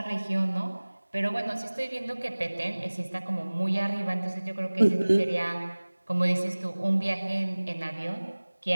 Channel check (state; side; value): inverted; both; correlation -1.00